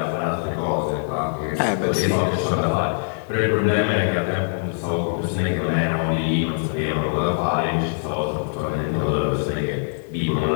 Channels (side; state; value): right; silent; digital silence